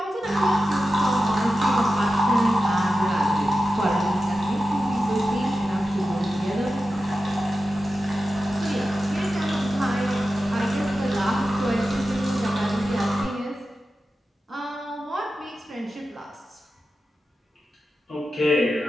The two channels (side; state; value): both; normal; correlation 0.92